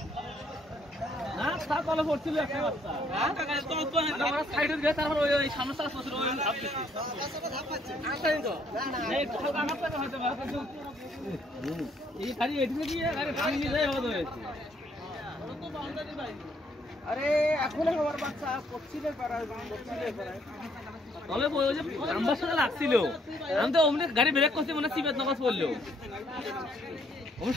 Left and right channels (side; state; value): both; normal; correlation 0.67